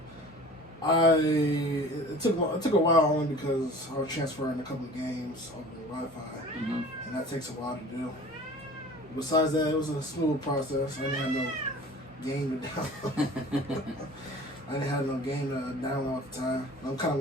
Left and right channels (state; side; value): normal; both; correlation 0.43